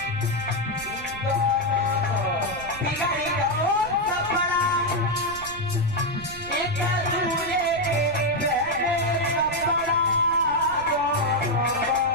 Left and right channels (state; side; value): noise; right; rumble, 16 dB below the sound